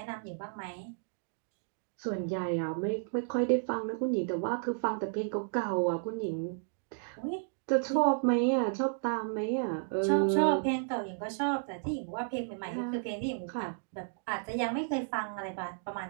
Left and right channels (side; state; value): left; silent; digital silence